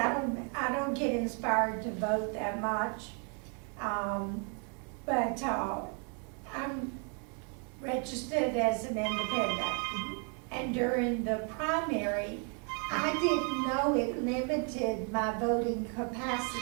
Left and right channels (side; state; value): left; quieter; 39.4 dB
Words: don't get inspired to vote that much. But I'm registered as an independent. And during the primary, I didn't know it limited my voting